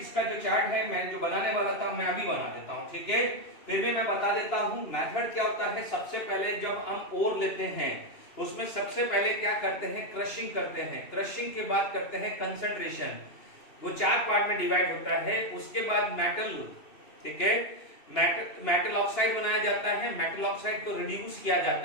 जो चार्ट है मैं जो बनाने वाला था मैं अभी बना देता हूं, ठीक है। फिर भी मैं बता देता हूं मेथड क्या होता है। सबसे पहले जब हम ओर लेते हैं उसमें सबसे पहले क्या करते हैं, क्रशिंग करते हैं, क्रशिंग के बाद करते हैं कंसंट्रेशन, वो 4 पार्ट में डिवाइड होता है। उसके बाद मेटल, ठीक है, मेटल ऑक्साइड बनाया जाता है, मेटल ऑक्साइड को रिड्यूस किया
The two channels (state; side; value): late; right; 2.9 ms